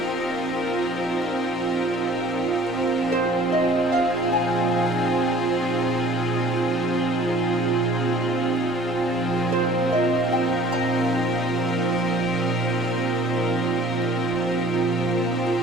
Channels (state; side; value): normal; both; correlation 0.51